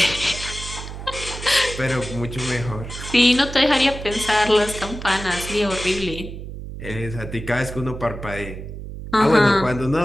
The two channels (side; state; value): right; noise; hum, 10 dB below the sound